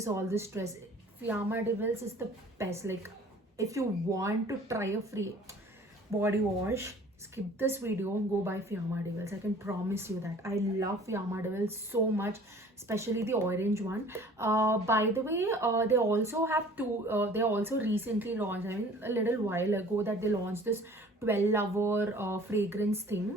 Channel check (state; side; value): normal; both; correlation 0.49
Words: all the stress. Fiamma Devils is the best. Like, if you want to try a free body wash, skip this video, go buy Fiamma Devils. I can promise you that. I love Fiamma Devils so much, especially the orange one. By the way, they also have they also recently launched, I mean a little while ago, that they launched this 12-hour fragrance